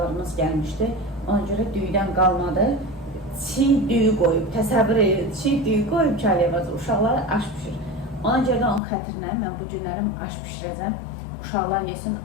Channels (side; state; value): right; drops out; at 8.8 s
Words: gəlmişdi. Ona görə düyüdən qalmadı. Çiğ düyü qoyub, təsəvvür edin, çiğ düyü qoyub ki, Aliyə bacı uşaqlara aş pişir. Ona görə də onun xətrinə mən bu günlərim aş pişirəcəm. Uşaqlar yesin,